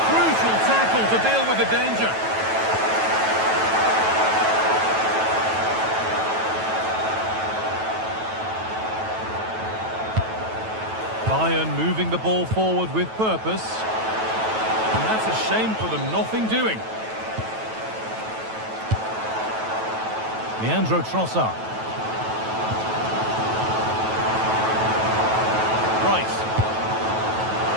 crucial tackle to deal with the danger. Bayern moving the ball forward with purpose. And that's a shame for them, nothing doing. Leandro Trossard. Rice.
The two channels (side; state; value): left; late; 9.2 ms